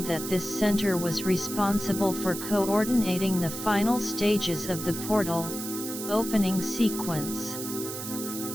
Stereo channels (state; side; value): noise; right; hiss, 7 dB below the sound